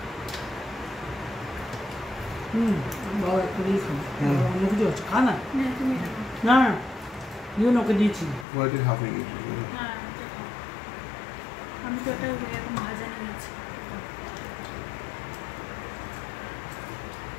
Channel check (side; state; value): right; drops out; at 8.5 s